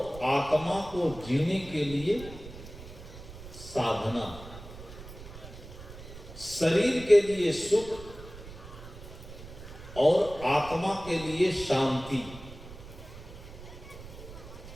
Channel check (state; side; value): noise; right; rumble, 14 dB below the sound